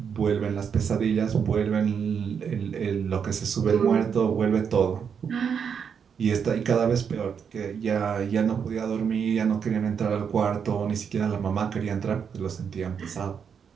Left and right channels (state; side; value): quieter; left; 7.0 dB